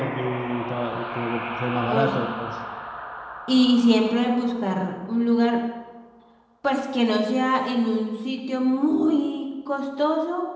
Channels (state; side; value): identical; both; correlation 1.00